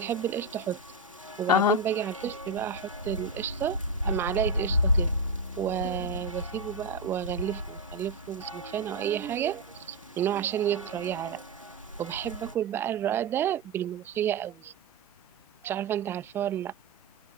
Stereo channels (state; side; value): quieter; left; 3.4 dB